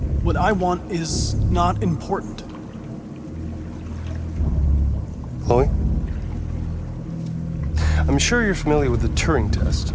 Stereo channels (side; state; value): both; identical; correlation 1.00